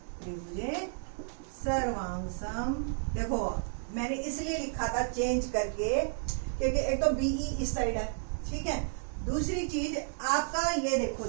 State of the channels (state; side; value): silent; left; 56 dB below the other